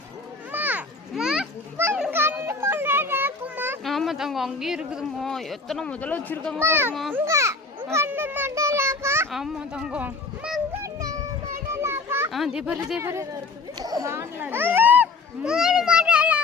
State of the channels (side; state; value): right; quieter; 4.0 dB